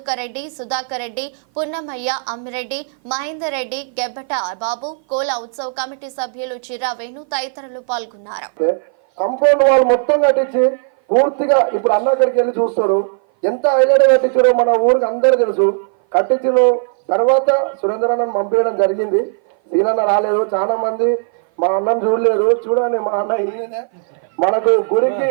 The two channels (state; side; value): silent; left; 57 dB below the other